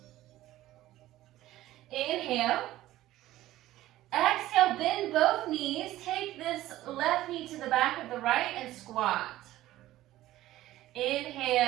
Inhale. Exhale, bend both knees. Take this left knee to the back of the right and squat.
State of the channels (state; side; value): quieter; left; 15.2 dB